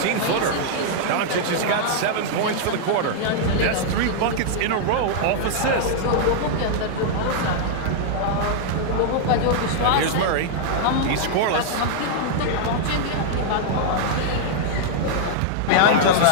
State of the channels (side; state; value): both; different; correlation -0.01